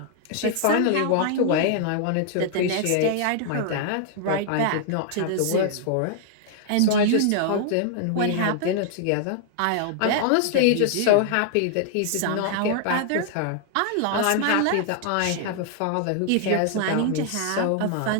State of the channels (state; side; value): different; both; correlation 0.00